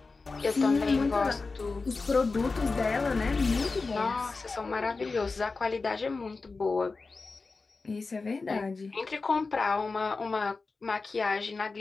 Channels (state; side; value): quieter; right; 4.0 dB